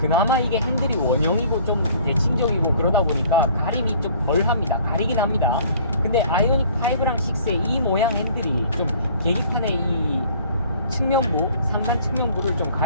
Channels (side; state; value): both; inverted; correlation -0.54